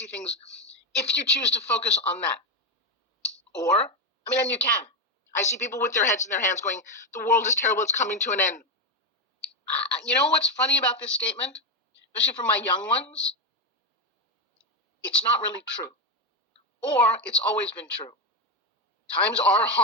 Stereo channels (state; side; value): normal; both; correlation 0.10